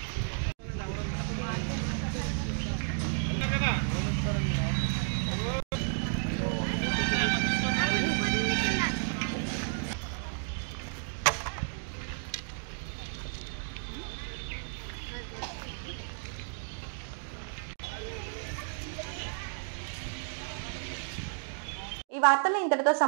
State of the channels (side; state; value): left; silent; digital silence